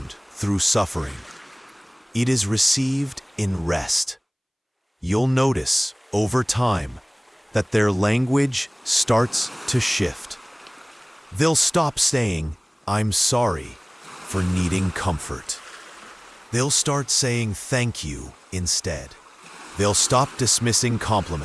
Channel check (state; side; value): identical; both; correlation 1.00